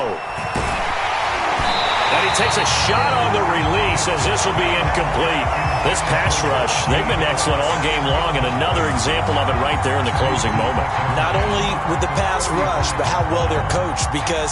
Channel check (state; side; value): identical; both; correlation 1.00